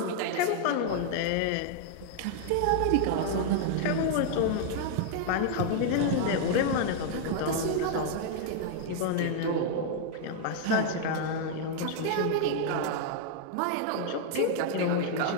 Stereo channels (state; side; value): different; both; correlation 0.00